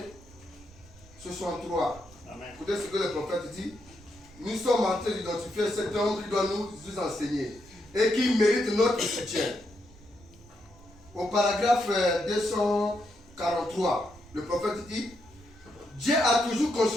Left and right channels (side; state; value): right; noise; rumble, 24 dB below the sound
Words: 63. Écoutez ce que le prophète dit. Nous sommes en train d'identifier cet homme qui doit nous enseigner et qui mérite notre soutien. Au paragraphe 243, le prophète dit: Dieu a toujours